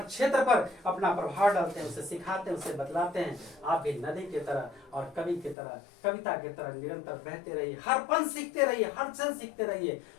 पर अपना प्रभाव डालते हैं, उसे सिखाते हैं, उसे बतलाते हैं। आप भी नदी की तरह और कवि की तरह, कविता की तरह निरंतर बहते रहिए, हर पल सीखते रहिए, हर क्षण सीखते रहिए।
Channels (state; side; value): drops out; right; at 5.6 s